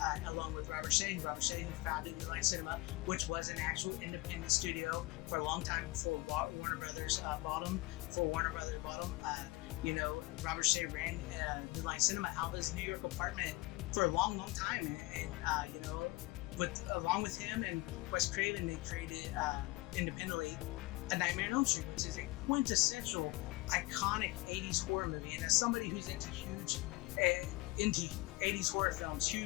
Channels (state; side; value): quieter; right; 21.7 dB